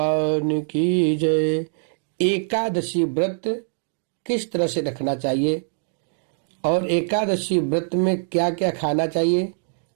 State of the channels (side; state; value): left; silent; digital silence